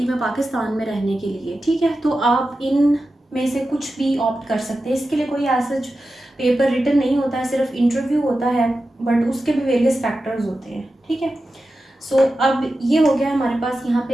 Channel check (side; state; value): both; normal; correlation 0.92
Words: में पाकिस्तान में रहने के लिए, ठीक है, तो आप इन में से कुछ भी ऑप्ट कर सकते हैं। इसके लिए कोई ऐसा पेपर रिटन नहीं होता है, सिर्फ इंटरव्यू होता है, बट उसके भी वेरियस फैक्टर्स होते हैं, ठीक है। सो अब ये हो गया हमारे पास यहाँ